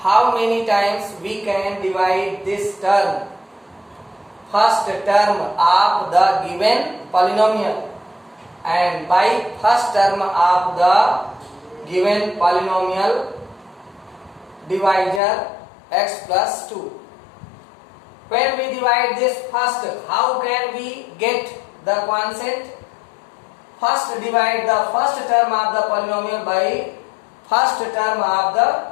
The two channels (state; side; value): drops out; right; at 15.2 s